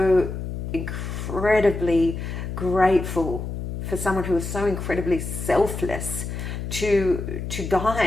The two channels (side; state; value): left; noise; hum, 5 dB below the sound